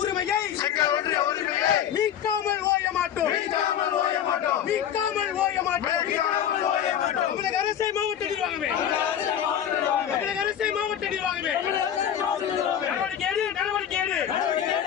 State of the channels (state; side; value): quieter; right; 9.7 dB